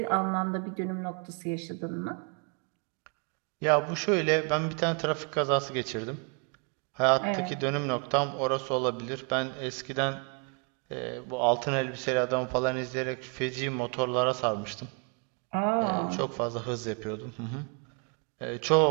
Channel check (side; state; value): left; quieter; 37.2 dB